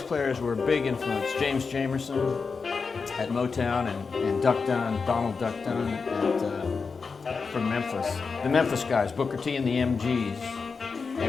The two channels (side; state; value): right; quieter; 4.9 dB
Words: players were a big influence. James Jamerson at Motown and Duck Dunn, Donald Duck Dunn from Memphis. The Memphis guys, Booker T and the MGs. They